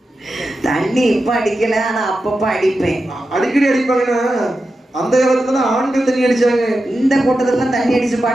தண்ணி இப்ப அடிக்கல, ஆனா அப்பப்ப அடிப்பேன். அடிக்கடி அடிப்பாங்கன்னா அந்த காலத்துல ஆண்கள் தண்ணி அடிச்சாங்க. இந்த கூட்டத்துல தண்ணி அடிச்சு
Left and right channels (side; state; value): both; normal; correlation 0.91